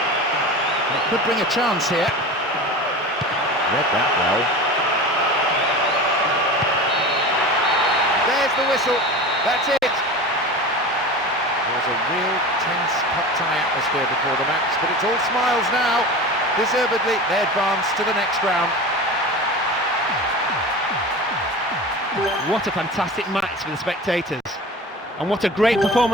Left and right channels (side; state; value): both; normal; correlation 0.32